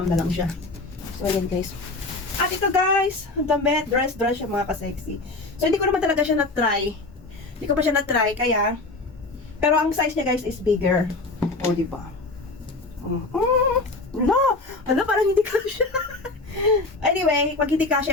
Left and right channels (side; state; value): right; quieter; 3.3 dB